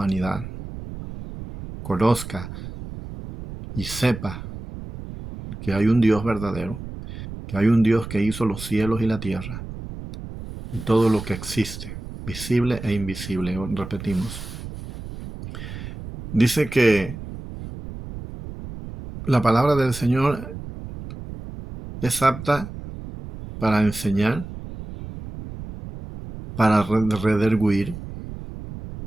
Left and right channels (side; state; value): right; noise; rumble, 11 dB below the sound